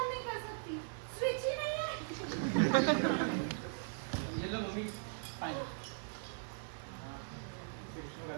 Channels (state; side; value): silent; left; 52 dB below the other